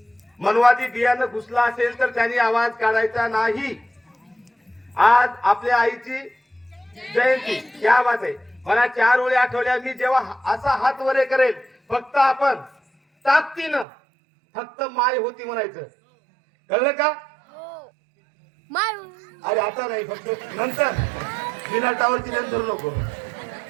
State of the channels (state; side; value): drops out; left; at 13.9 s